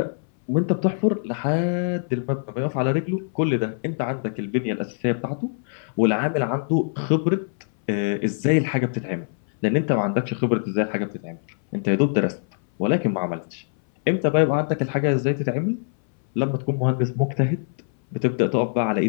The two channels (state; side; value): silent; right; 61 dB below the other